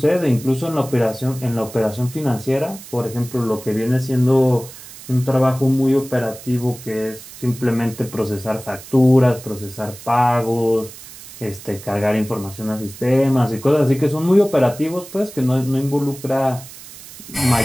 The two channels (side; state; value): right; noise; hiss, 16 dB below the sound